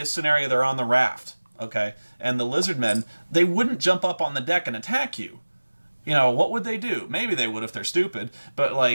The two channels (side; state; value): both; inverted; correlation -1.00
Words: scenario they're on the raft, okay? And the lizard men, they wouldn't jump up on the deck and attack you. You know, what would they do? Maybe they would if they're stupid, but,